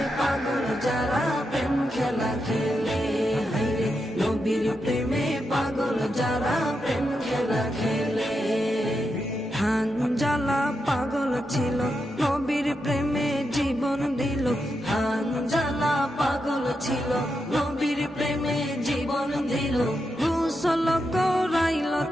পাগল যারা প্রেম খেলা খেলে, হায়রে নবীর প্রেমে পাগল যারা প্রেম খেলা খেলে। হানজালা পাগল ছিল নবীর প্রেমে জীবন দিল, হানজালা পাগল ছিল নবীর প্রেমে জীবন দিল। গোসল করাইল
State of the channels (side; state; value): both; normal; correlation 0.85